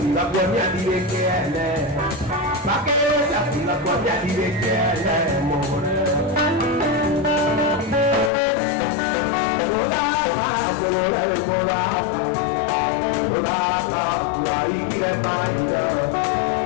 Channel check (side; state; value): right; drops out; at 8.3 s